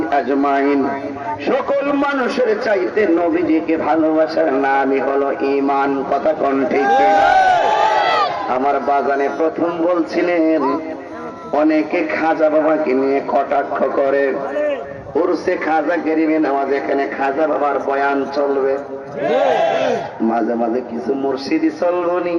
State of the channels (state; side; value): identical; both; correlation 1.00